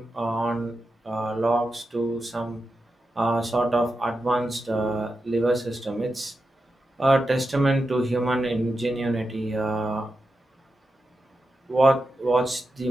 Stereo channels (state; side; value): normal; both; correlation 0.89